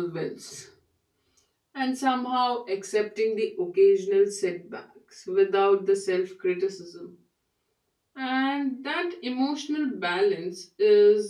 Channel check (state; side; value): identical; both; correlation 1.00